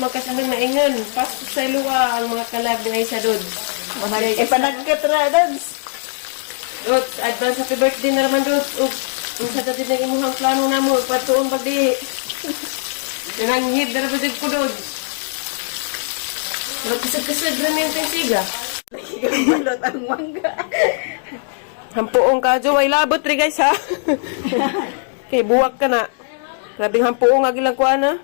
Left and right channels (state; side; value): silent; right; digital silence